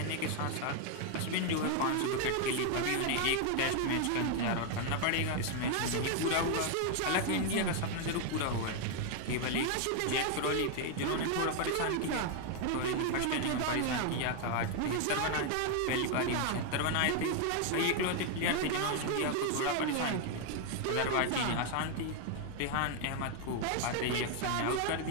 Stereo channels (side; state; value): both; different; correlation 0.01